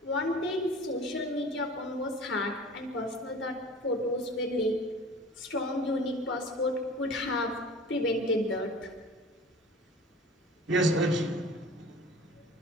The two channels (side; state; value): both; normal; correlation 0.42